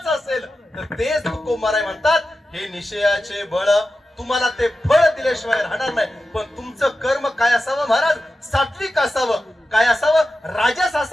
असेल तर तेच तुकोबाराय म्हणतात, हे निश्चयाचे बळ. तुम्हाला ते फळ दिल्याशिवाय राहणार नाही. पण तुमचं कर्म काय असावं महाराज? सात्विक असावं. काय असावं? राजस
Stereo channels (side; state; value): both; normal; correlation 0.92